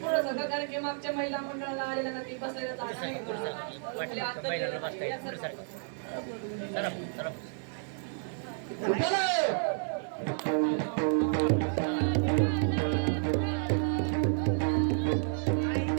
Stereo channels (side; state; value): left; silent; digital silence